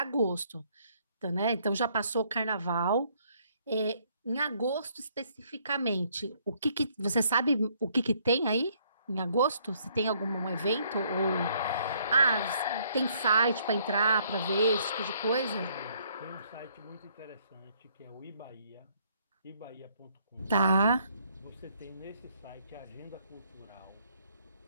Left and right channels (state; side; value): inverted; both; correlation -0.67